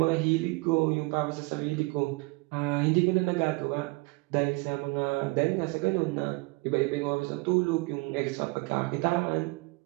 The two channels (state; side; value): quieter; left; 26.3 dB